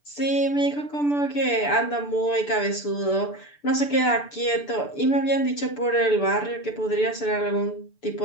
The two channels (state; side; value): late; right; 6.9 ms